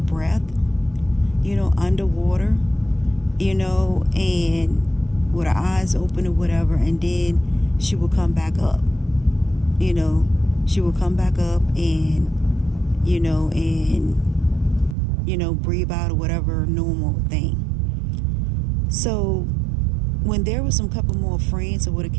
underwater, and with her eyes open or whatever, and then she would come back up, she would come back up and breathe out or whatever normal thing. So when there was some couple more friends that would have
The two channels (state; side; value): drops out; left; at 15.0 s